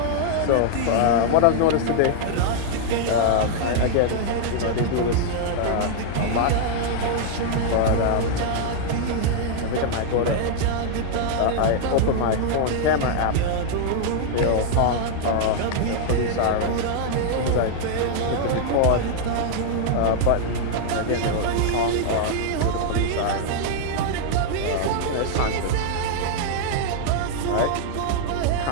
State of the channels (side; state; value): both; different; correlation -0.01